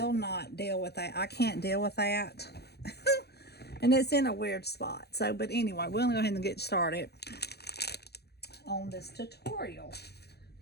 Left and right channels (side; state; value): right; late; 0.48 ms